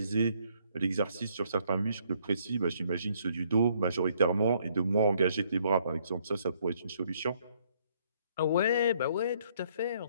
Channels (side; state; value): both; inverted; correlation -0.67